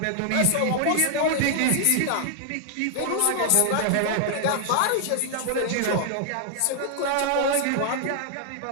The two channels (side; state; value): both; different; correlation 0.00